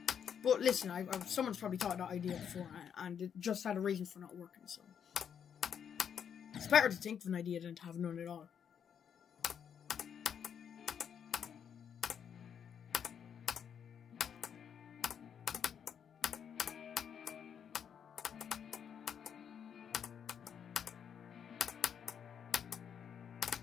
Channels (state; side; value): quieter; right; 8.0 dB